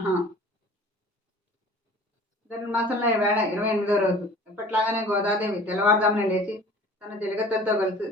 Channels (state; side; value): normal; both; correlation 0.45